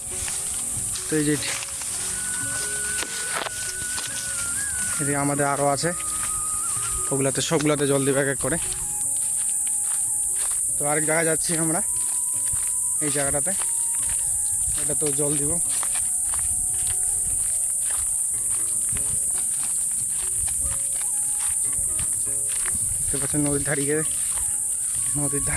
তো এই যে এদিকে আমাদের আরও আছে, ওগুলাতে সবগুলাতে জল দেবে এক এক করে। তো আরেক জায়গায় যাচ্ছি আমরা, এই জায়গাটাতে এটা তো জল দিব। দেখতে পাচ্ছেন নদীর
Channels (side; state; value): both; identical; correlation 1.00